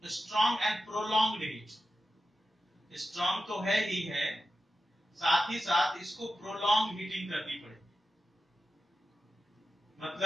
and prolonged heat, strong तो है ही है, साथ ही साथ इसको प्रोलॉन्ग हीटिंग करनी पड़ेगी।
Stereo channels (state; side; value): normal; both; correlation 0.92